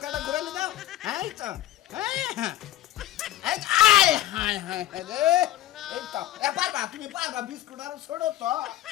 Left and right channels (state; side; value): quieter; right; 14.0 dB